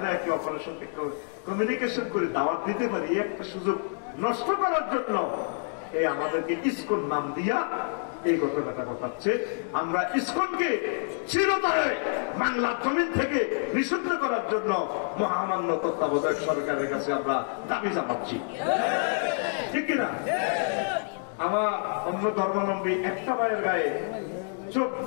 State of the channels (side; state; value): right; silent; 59 dB below the other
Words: একে অপরের সঙ্গে কমিউনিকেশন করে দাওয়াত দিতে পারি, এই একটা সুযোগ নষ্ট করার জন্য এই আমাদেরকে ইসকন নাম দিয়া এই ঘটনাটা ঘটাচ্ছে। আমরা ইসকনকে চিরতরে বাংলার জমিন থেকে নিষিদ্ধ করার জন্য মহামান্য তত্ত্বাবধায়ক সরকারের কাছে আমরা দাবি জানাচ্ছি। ঠিক কিনা? আমার অন্য ধর্মাবলম্বী একটা ভাইয়ের গায়ে চোখ